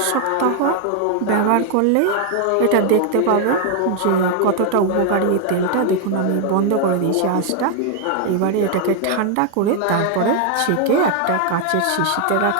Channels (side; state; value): both; different; correlation 0.00